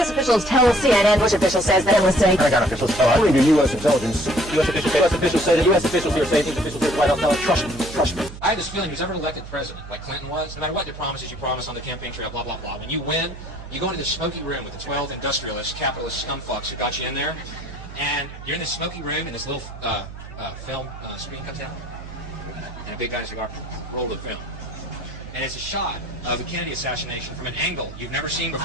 officials tell CNN. Bush official says that it was saying. Pentagon officials tell us. According to U.S. intelligence, U.S. officials say that U.S. officials here say things officials here at the White House tell us. Trust me. I have this feeling who's ever elected president, like Clinton was, no matter what the promises you promise on the campaign trail, blah, blah, blah, when you win, you go into this smoky room with the 12 industrialists, capitalist scumfucks who got you in there, and you're in this smoky room, and this little film screen comes out, and a big guy's cigar roll the film. And it's a shot of the Kennedy assassination from an angle you've never seen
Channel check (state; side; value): noise; right; hum, 13 dB below the sound